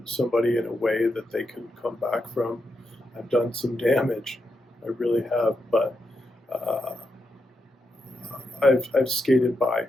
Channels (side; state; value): both; normal; correlation 0.84